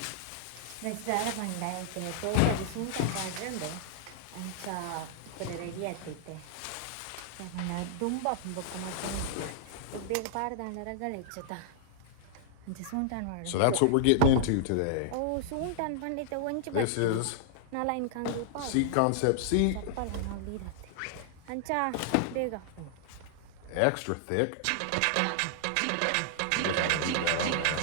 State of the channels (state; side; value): different; both; correlation -0.01